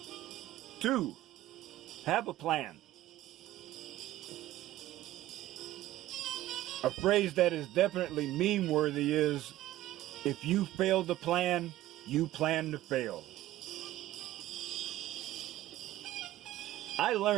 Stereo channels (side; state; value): left; quieter; 14.9 dB